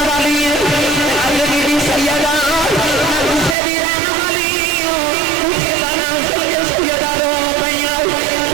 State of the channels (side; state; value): left; drops out; at 3.6 s